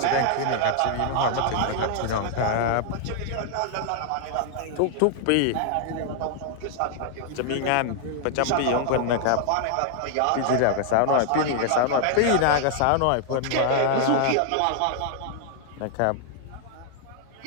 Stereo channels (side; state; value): both; different; correlation 0.00